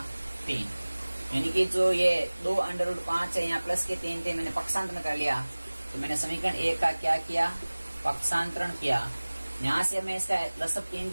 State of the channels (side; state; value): both; inverted; correlation -1.00